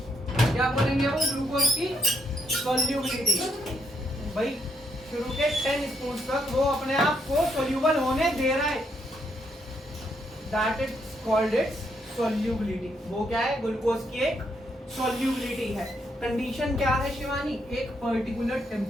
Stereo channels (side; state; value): both; normal; correlation 0.76